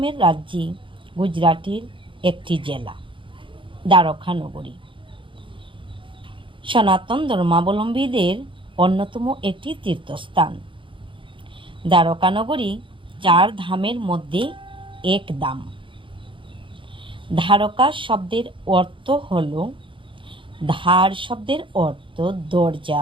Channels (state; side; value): late; left; 0.25 ms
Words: রাজ্যে গুজরাটের একটি জেলা দ্বারকা নগরী সনাতন ধর্মাবলম্বীদের অন্যতম একটি তীর্থস্থান। দ্বারকা নগরী 4 ধামের মধ্যে এক ধাম। দ্বারকা শব্দের অর্থ হল, ধার শব্দের অর্থ